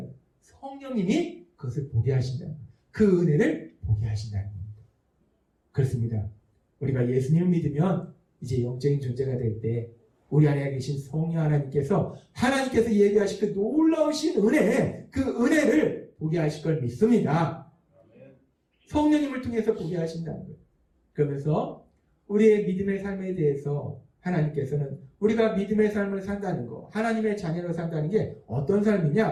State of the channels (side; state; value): both; identical; correlation 1.00